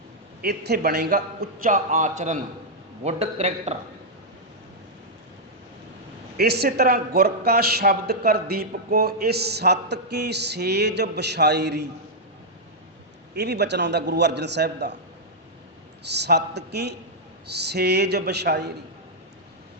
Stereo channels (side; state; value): both; normal; correlation -0.06